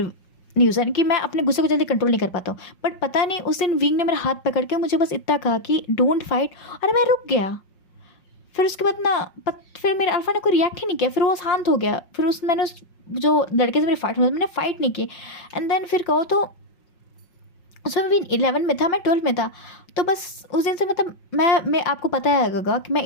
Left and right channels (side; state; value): right; late; 5.5 ms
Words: न्यूज़न कि मैं अपने गुस्से को जल्दी कंट्रोल नहीं कर पाता हूँ, बट पता नहीं उस दिन विंग ने मेरा हाथ पकड़ के मुझे बस इतना कहा कि डोंट फाइट, और मैं रुक गया। फिर उसके बाद ना फिर मेरे अल्फा ने कोई रिएक्ट ही नहीं किया, फिर वो शांत हो गया। फिर मैंने उस जो लड़के से मेरी फाइट हुई मैंने फ़ाइट नहीं की। एंड देन फिर कहो तो उसमें भी 11 में था, मैं 12 में था। तो बस उस दिन से मतलब मैं आपको पता है गगा कि